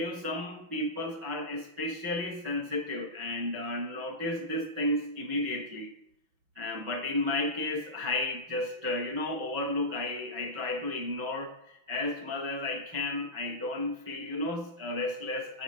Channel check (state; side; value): late; left; 6.0 ms